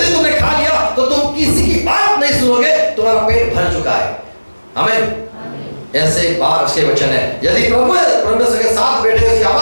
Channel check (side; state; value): both; inverted; correlation -1.00